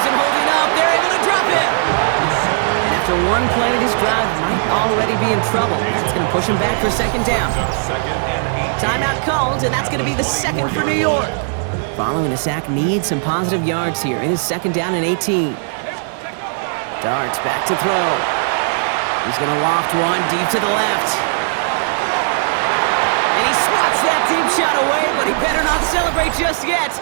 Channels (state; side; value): silent; left; digital silence